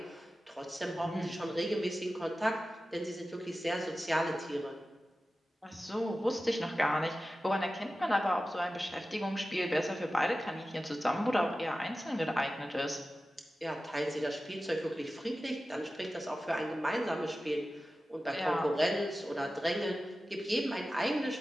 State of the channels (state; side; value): normal; both; correlation 0.94